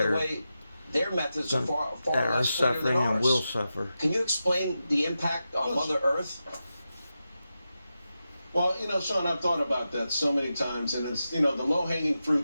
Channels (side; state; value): both; inverted; correlation -0.91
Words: the are way, their methods are that far are less cleaner than suffering and ours. will suffer. Can you explain the impact on Mother Earth? Well, Sean, I've thought about that so many times, and it's, the low-hanging